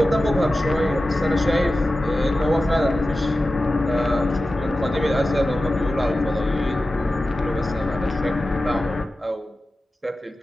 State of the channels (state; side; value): normal; both; correlation 0.94